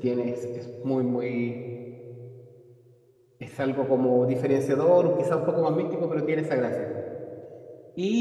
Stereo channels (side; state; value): both; identical; correlation 1.00